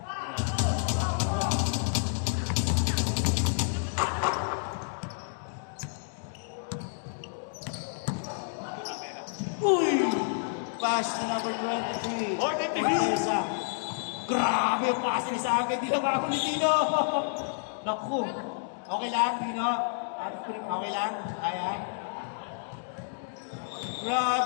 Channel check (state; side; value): silent; right; digital silence